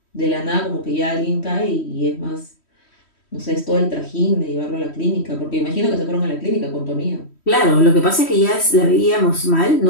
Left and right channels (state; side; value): late; right; 3.1 ms